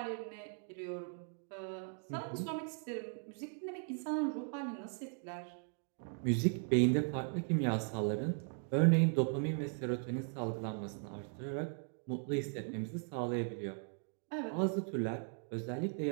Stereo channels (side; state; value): left; silent; 52 dB below the other